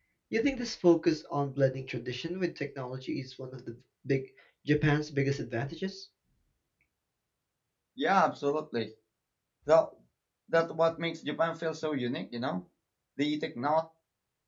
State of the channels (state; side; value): identical; both; correlation 1.00